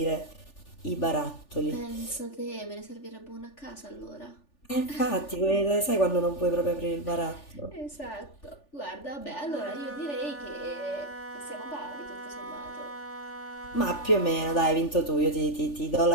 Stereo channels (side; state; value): right; late; 3.4 ms